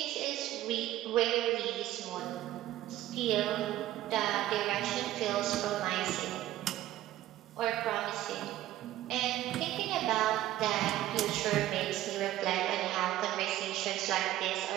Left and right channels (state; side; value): quieter; left; 14.2 dB